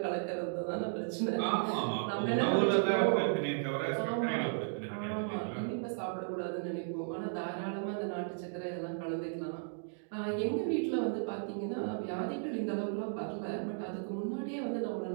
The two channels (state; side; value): silent; left; digital silence